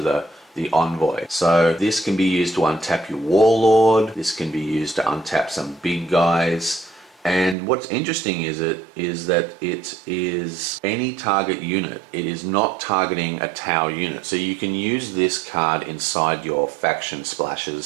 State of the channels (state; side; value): drops out; left; at 7.6 s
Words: envoy. So this can be used to untap your Warlord. This can be used to untap some big guys. And what's interesting is that it is any target unit. It is not targeting a Tau unit. So you can use this card inside your faction